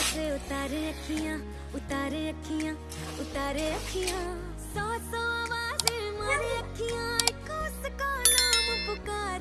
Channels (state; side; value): identical; both; correlation 1.00